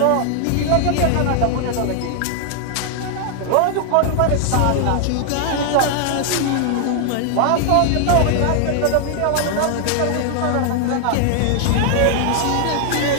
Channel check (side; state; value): both; different; correlation 0.00